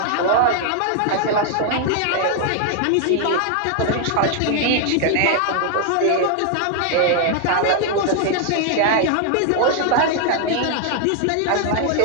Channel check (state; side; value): different; both; correlation 0.00